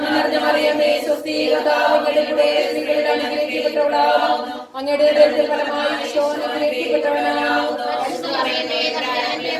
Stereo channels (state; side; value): identical; both; correlation 1.00